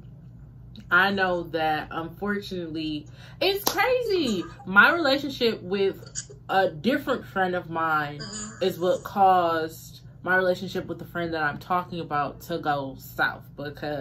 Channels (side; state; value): both; identical; correlation 1.00